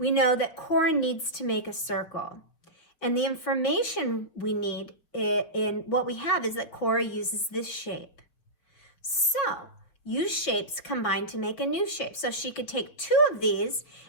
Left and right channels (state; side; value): late; right; 6.2 ms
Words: know that Cora needs to make a circle. And the information we need in what we have is that Cora uses this shape. So use shapes combined to make a new shape. So she could take two of these